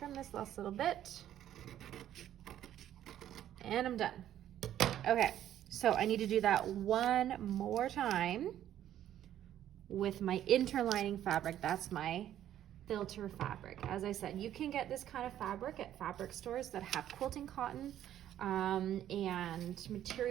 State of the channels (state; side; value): quieter; left; 11.5 dB